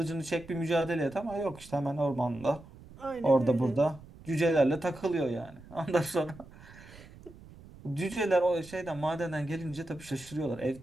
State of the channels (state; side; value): noise; right; rumble, 20 dB below the sound